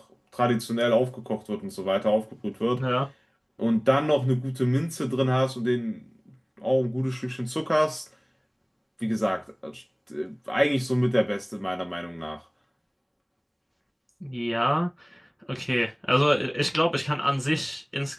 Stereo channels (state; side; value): identical; both; correlation 1.00